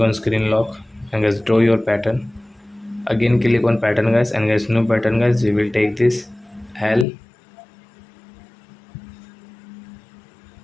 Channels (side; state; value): right; drops out; at 7.1 s